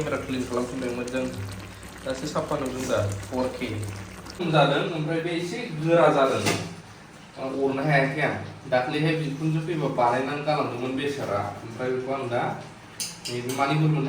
क्लिन खालामफिनदों मोजां दासो साफा नुदों दा 4K जादों ओमफ्राय बे एसे गोरा जादों अरनो हायाखै आं दाख्लैहाय बिखुनजो फैबा बानायनानै गालांदोंमोन बेसारा ओमफ्राय बेखौ आं दा नैबे मानि बुर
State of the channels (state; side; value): identical; both; correlation 1.00